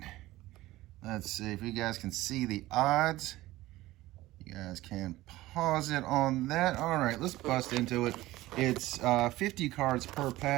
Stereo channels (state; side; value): quieter; left; 17.3 dB